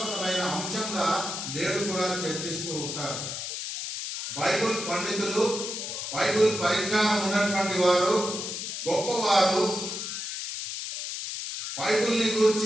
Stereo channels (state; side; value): noise; left; hiss, 5 dB below the sound